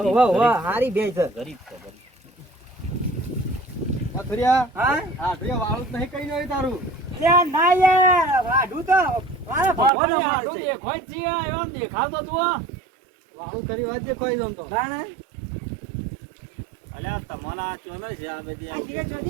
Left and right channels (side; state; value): left; drops out; at 9.9 s